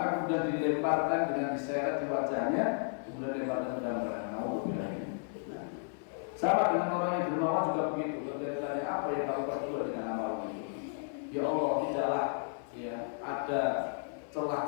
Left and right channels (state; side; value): silent; right; digital silence